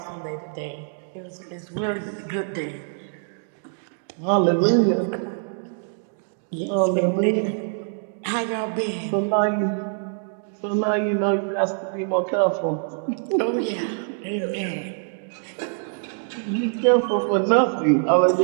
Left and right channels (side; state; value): left; silent; digital silence